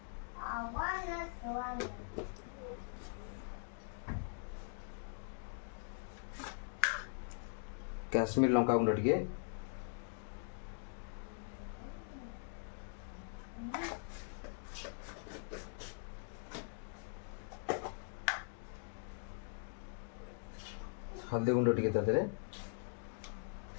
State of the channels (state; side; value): silent; right; digital silence